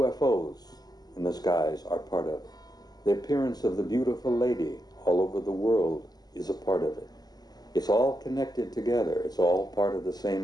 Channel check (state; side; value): late; right; 0.19 ms